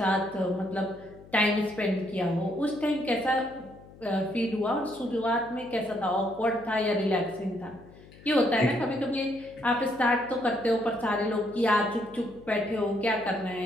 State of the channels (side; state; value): left; noise; hum, 21 dB below the sound